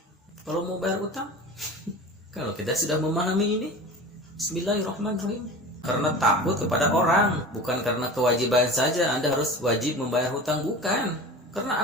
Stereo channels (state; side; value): normal; both; correlation 0.34